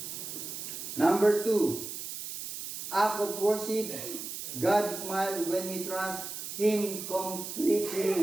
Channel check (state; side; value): noise; right; hiss, 7 dB below the sound